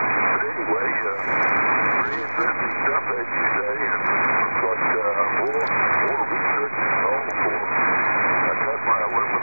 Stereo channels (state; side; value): inverted; both; correlation -1.00